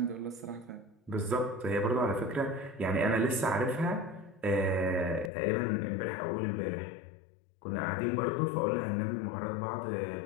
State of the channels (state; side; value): drops out; right; at 5.3 s